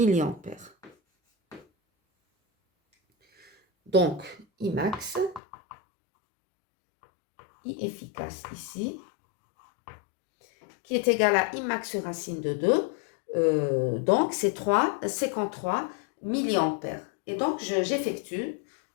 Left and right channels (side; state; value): right; drops out; at 5.4 s